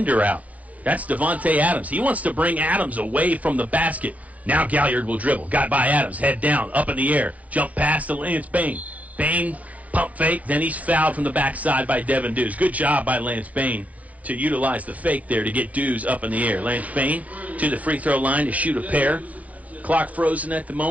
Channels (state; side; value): late; left; 0.072 ms